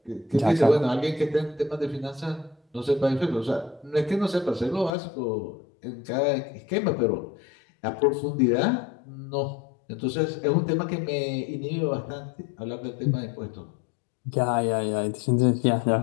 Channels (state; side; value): drops out; right; at 4.9 s